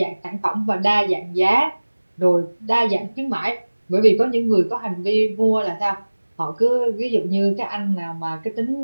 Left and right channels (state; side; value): inverted; both; correlation -1.00